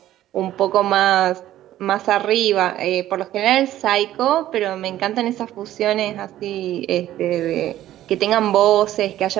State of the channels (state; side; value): quieter; left; 13.4 dB